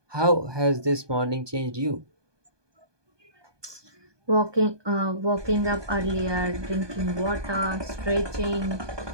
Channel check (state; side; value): late; left; 1.2 ms